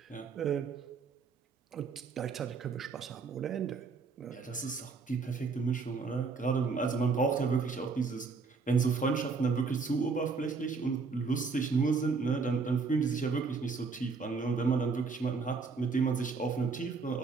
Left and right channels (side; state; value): left; quieter; 4.7 dB